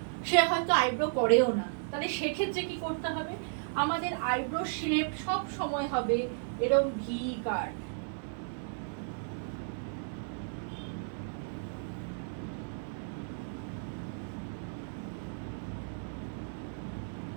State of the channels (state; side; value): silent; left; digital silence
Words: সে হয়তো আইব্রো করেও না। তাহলে সেক্ষেত্রে কি করতে হবে, আমাদের আইব্রো শেপ সব সময় হবে এরকম ভি কাট।